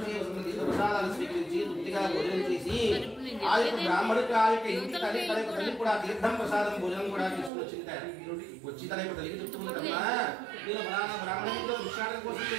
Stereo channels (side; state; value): left; drops out; at 7.5 s